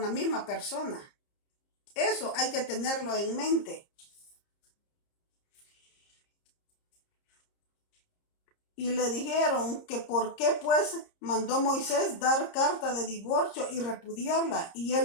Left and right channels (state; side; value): late; right; 30 ms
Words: la misma persona. Eso hay que tenerlo en mente. Y le dijeron que por qué pues mandó Moisés dar carta de divorcio y repudiarla. Y